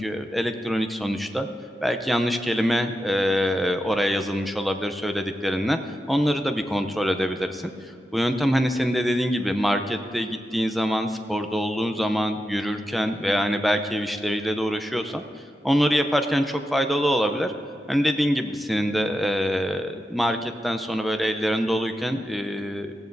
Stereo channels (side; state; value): both; normal; correlation 0.88